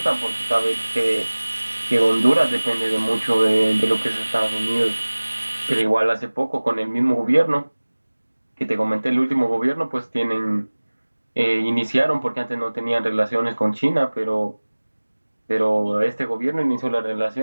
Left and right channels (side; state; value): both; inverted; correlation -1.00